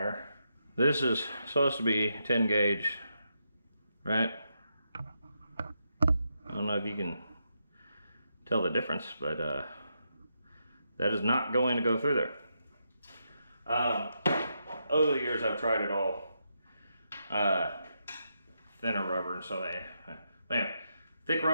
This is supposed to be 10 gauge, right? I don't know if you can tell the difference, but that is not going to go through there. Over the years I've tried it all. Thinner rubber, and so anyway, thick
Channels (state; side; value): inverted; both; correlation -0.83